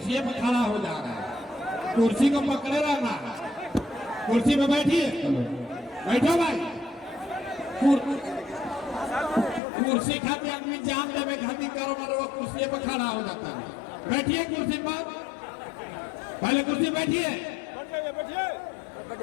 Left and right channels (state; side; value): drops out; right; at 9.6 s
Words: पर खड़ा हो जा रहा है, कुर्सी को पकड़े रहना। कुर्सी पे बैठिए, बैठो भाई। कुर्सी खाते आदमी जान देवे खाती करो मरो, कुर्सी पर खड़ा हो जाता है। बैठिए कुर्सी पर, पहले कुर्सी बैठिए।